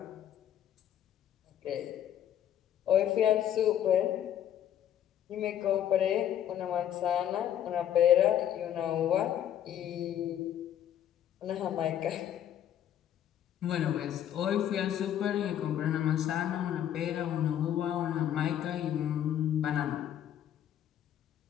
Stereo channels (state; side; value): quieter; right; 10.6 dB